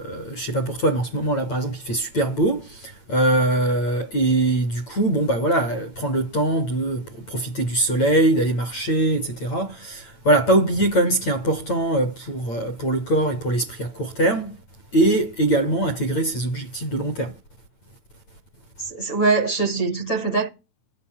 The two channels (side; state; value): right; late; 8.9 ms